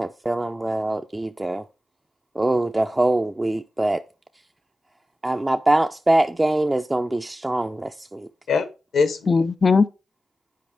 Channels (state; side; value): normal; both; correlation 0.94